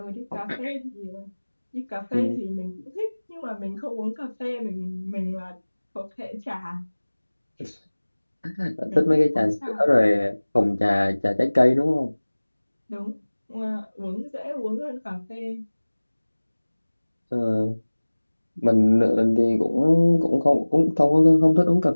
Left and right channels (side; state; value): both; inverted; correlation -1.00